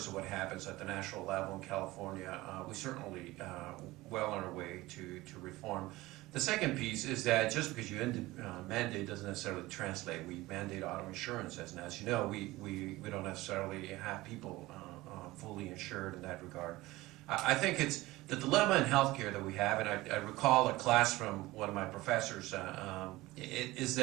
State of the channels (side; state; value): left; quieter; 19.1 dB